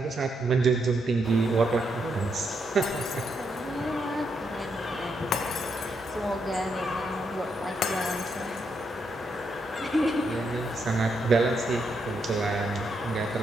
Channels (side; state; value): both; normal; correlation 0.79